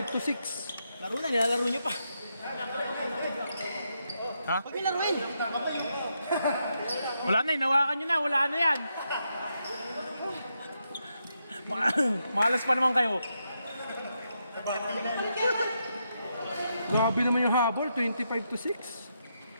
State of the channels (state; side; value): inverted; both; correlation -0.82